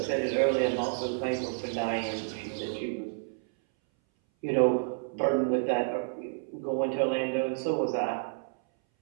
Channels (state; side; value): silent; left; 58 dB below the other